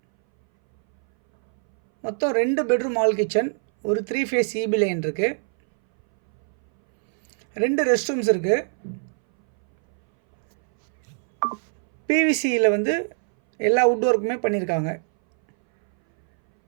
மொத்தம் 2 பெட்ரூம் ஹால் கிச்சன், ஒரு 3 ஃபேஸ் இபி லைன் இருக்குது. 2 ரெஸ்ட் ரூம்ஸ் இருக்குது. பிவிசியில் வந்து எல்லா வுட் ஒர்க்குமே பண்ணியிருக்காங்க.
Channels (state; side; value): silent; left; 62 dB below the other